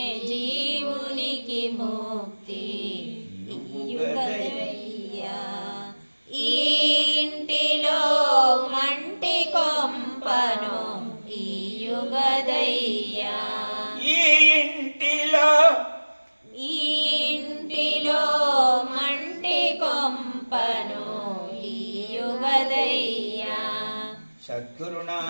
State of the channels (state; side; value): inverted; both; correlation -1.00